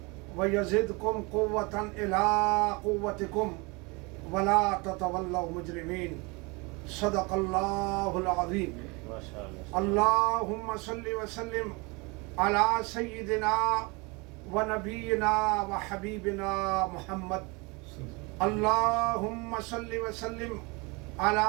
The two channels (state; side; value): quieter; left; 27.6 dB